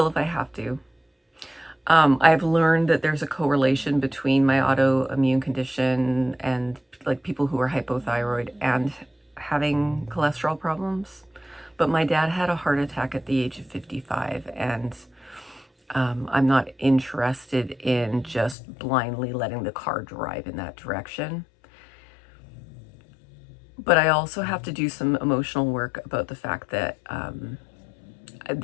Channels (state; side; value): drops out; right; at 18.6 s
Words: if I have to. I've learned that there's a correlation between my autoimmune condition and, like, people who are hypothyroid and having cholesterol problems. But my dad had a heart attack at the age of 55, and I'm not interested in just blindly letting the car drive in that direction. But I also have to do some emotional work about the fact that